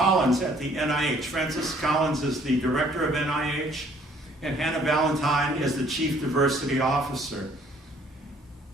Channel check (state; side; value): normal; both; correlation 0.60